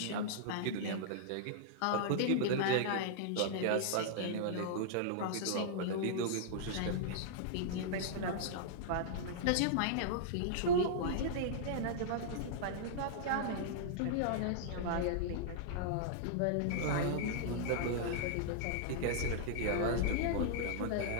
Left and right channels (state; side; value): different; both; correlation -0.02